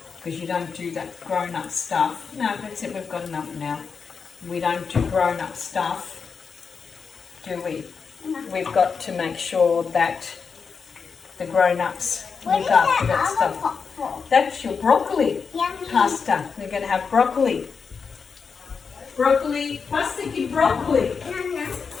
Because you don't do that grown-up stuff. No, that's it, we've got enough now. We don't do grown-up stuff, do we? No. We've got to make sure that the grown-ups What look is after that that other stuff. pot for? That's your broccoli Yummy. pasta. We're going to have broccoli. Broccoli, pasta di broccoli, Nonna,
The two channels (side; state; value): right; quieter; 5.6 dB